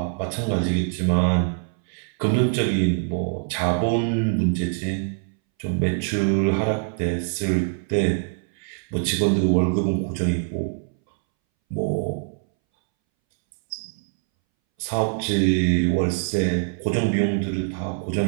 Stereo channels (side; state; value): left; silent; 62 dB below the other